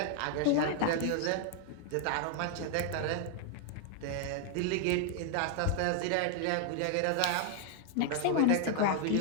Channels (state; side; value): different; both; correlation 0.00